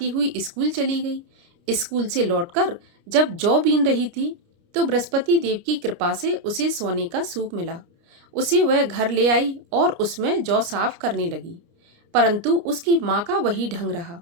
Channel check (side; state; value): left; late; 29 ms